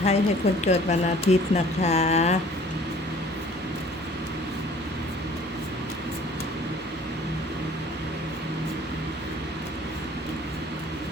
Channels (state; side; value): normal; both; correlation 0.52